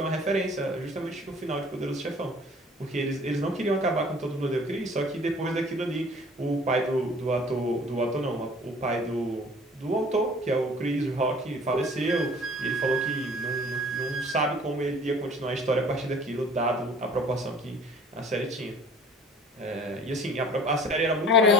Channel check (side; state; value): both; normal; correlation 0.49